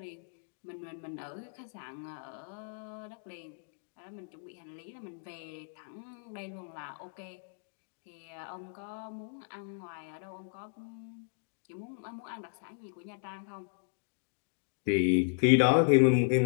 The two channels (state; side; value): silent; right; digital silence